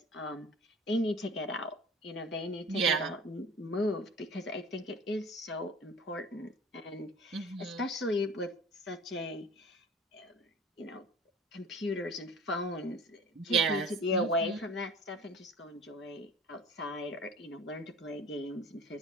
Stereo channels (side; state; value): both; normal; correlation 0.43